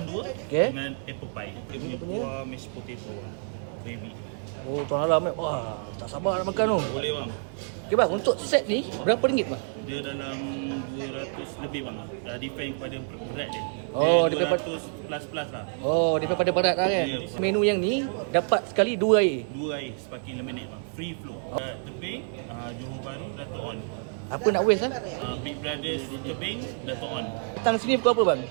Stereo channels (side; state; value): left; silent; 59 dB below the other